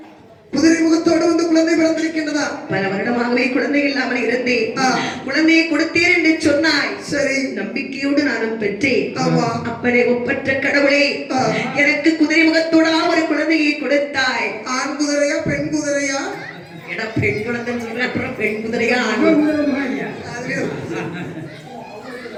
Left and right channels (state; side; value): identical; both; correlation 1.00